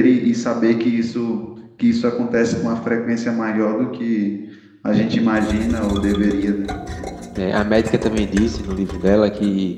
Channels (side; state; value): both; identical; correlation 1.00